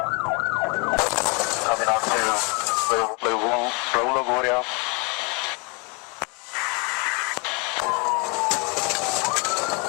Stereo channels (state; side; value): quieter; right; 32.1 dB